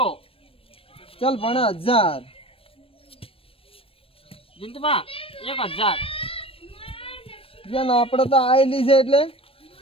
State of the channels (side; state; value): right; late; 0.27 ms